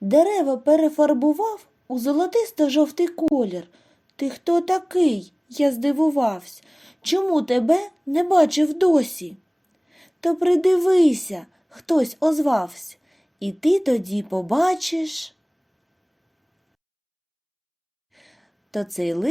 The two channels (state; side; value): identical; both; correlation 1.00